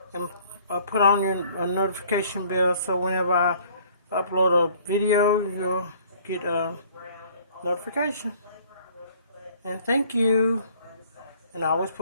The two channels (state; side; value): inverted; both; correlation -0.56